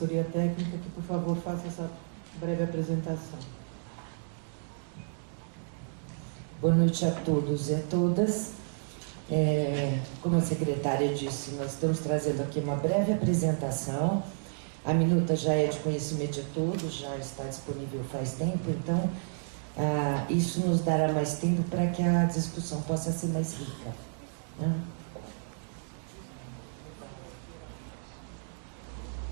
técnica, que por favor faça essa breve apresentação. Boa noite a todos e a todas. Como a secretária disse, nós estamos trazendo aqui uma breve apresentação. A minuta já é de conhecimento de todos, já está disponível faz tempo, então isso nos dará mais tempo para que a discussão possa ser mais rica, né?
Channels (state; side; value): silent; left; digital silence